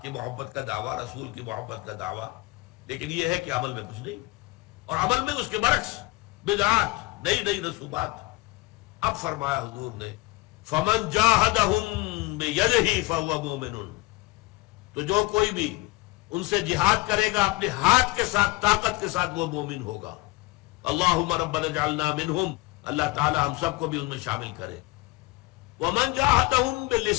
کی محبت کا دعویٰ، رسول کی محبت کا دعویٰ، لیکن یہ ہے کہ عمل میں کچھ نہیں، اور عمل میں اس کے برعکس بدعات، نئی نئی رسومات۔ اب فرمایا حضور نے فَمَنْ جَاهَدَهُمْ بِيَدِهِ فَهُوَ مُؤْمِنٌ، تو جو کوئی بھی ان سے جہاد کرے گا اپنے ہاتھ کے ساتھ، طاقت کے ساتھ، وہ مومن ہوگا۔ اللہم ربنا اجعلنا منہم، اللہ تعالی ہم سب کو بھی ان میں شامل کرے۔ ومن جاہدہم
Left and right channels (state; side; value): quieter; right; 21.9 dB